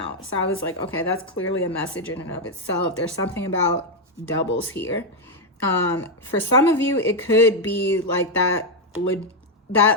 so I was like, okay, that's clearly a message in and of itself. There's something about doubles here. For some of you, it could be like that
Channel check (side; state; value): both; normal; correlation 0.03